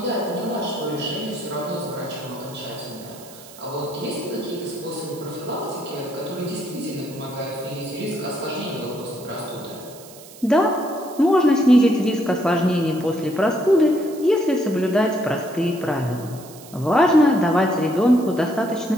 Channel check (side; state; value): right; noise; hiss, 19 dB below the sound